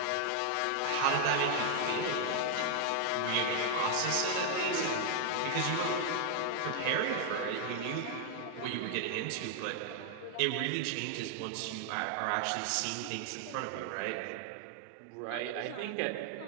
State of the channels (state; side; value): different; both; correlation 0.00